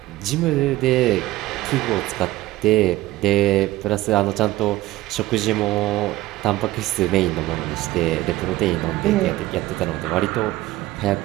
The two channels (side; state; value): left; quieter; 17.3 dB